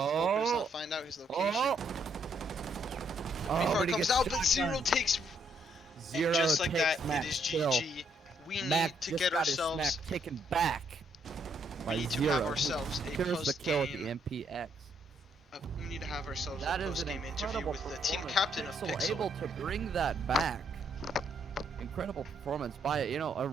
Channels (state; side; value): normal; both; correlation 0.72